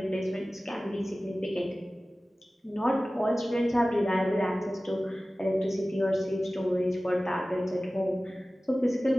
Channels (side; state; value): both; normal; correlation 0.97